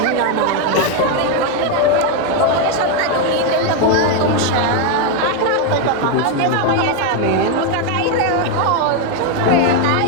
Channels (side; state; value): both; different; correlation 0.01